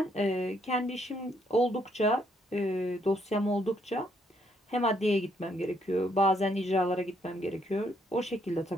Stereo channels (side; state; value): both; normal; correlation 0.71